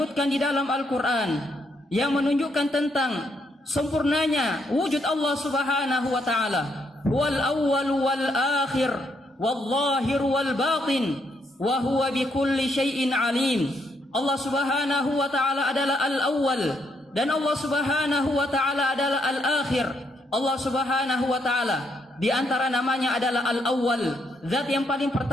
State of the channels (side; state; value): both; normal; correlation 0.75